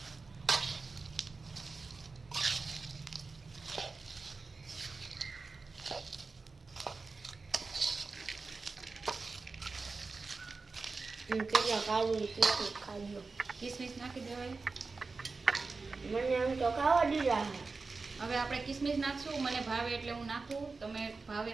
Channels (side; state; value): left; quieter; 4.1 dB